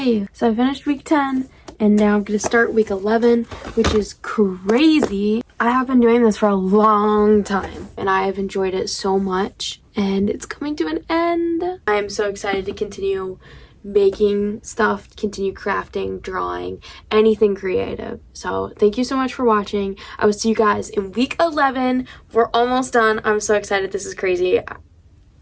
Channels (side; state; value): both; identical; correlation 1.00